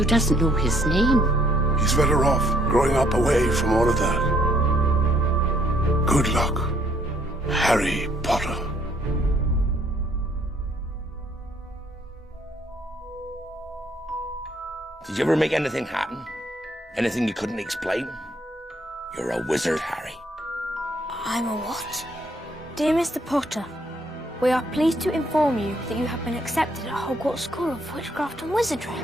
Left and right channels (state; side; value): normal; both; correlation 0.66